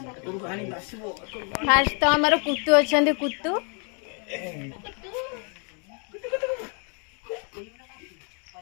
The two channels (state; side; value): quieter; right; 38.6 dB